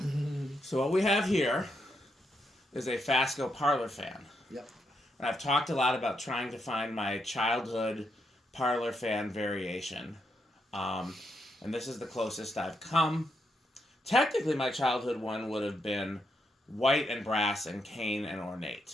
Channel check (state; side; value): normal; both; correlation 0.80